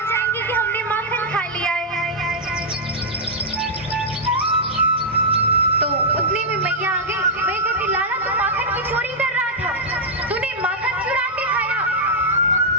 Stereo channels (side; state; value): both; normal; correlation -0.07